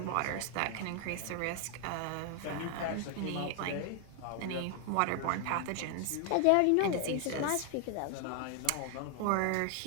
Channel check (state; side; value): different; both; correlation 0.00